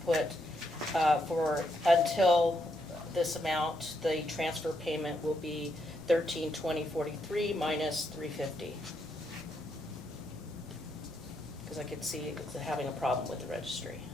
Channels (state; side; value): noise; left; rumble, 26 dB below the sound